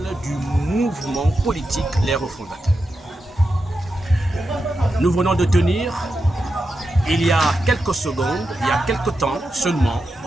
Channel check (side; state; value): both; normal; correlation 0.88